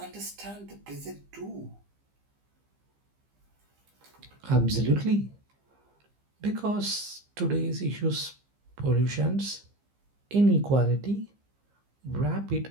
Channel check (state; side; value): late; left; 15 ms